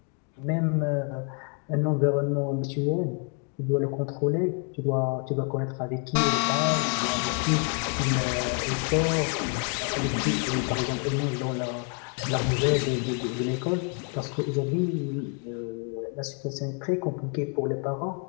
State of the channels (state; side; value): quieter; right; 39.3 dB